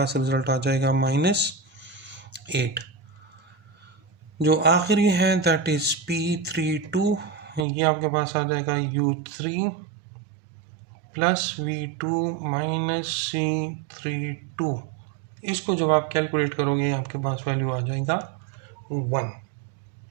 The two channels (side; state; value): left; drops out; at 7.7 s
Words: रिजल्ट आ जाएगा -8। जो आखिरी है दैट इज P32, ये आपके पास आ जाएगा U3 plus V2 minus C32। इसको जब आप कैलकुलेट करोगे आपके पास वैल्यू आ जाएगा 1।